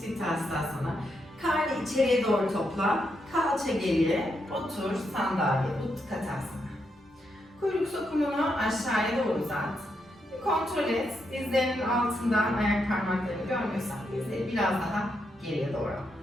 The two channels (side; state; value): both; normal; correlation 0.81